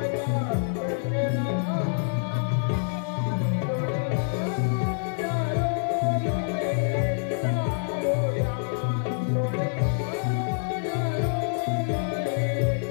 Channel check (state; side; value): silent; right; digital silence